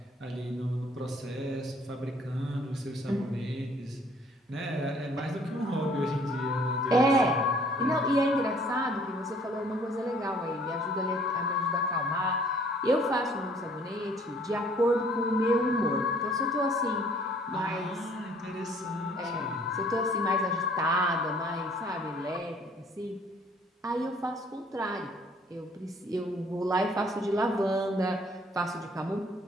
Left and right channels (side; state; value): both; normal; correlation 0.58